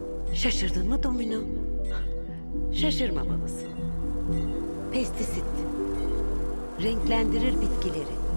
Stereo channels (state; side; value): inverted; both; correlation -1.00